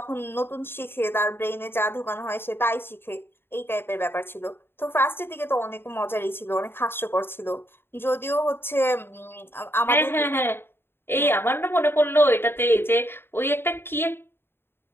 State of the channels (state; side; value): late; right; 0.11 ms